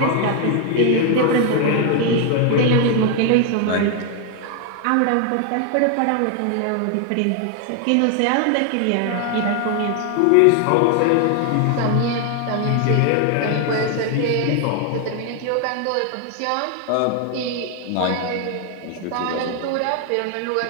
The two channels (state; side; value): different; both; correlation 0.00